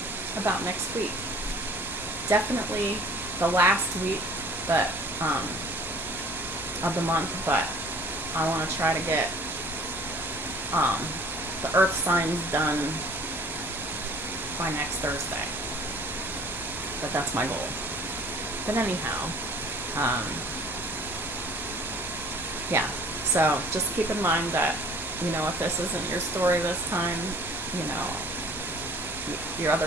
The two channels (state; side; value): normal; both; correlation 0.51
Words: about next week. Definitely the last week of the month, but I want to try to get the earth signs done by next Thursday. But that's my goal. But anyhow, yeah, so just keep in mind that, if this isn't your story this time, your